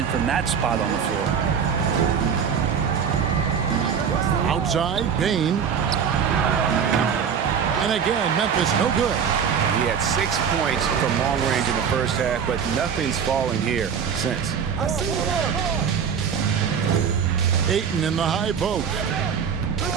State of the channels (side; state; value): left; quieter; 7.1 dB